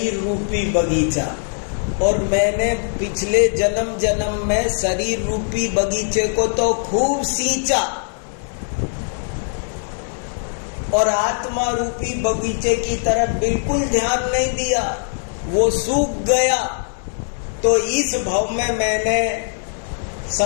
रूपी बगीचा। और मैंने पिछले जन्म में शरीर रूपी बगीचे को तो खूब सींचा और आत्मा रूपी बगीचे की तरफ बिल्कुल ध्यान नहीं दिया, वो सूख गया। तो इस भव में मैंने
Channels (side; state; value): right; silent; 65 dB below the other